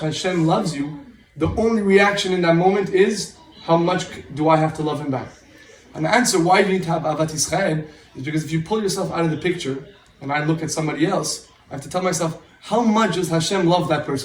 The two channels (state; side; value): identical; both; correlation 1.00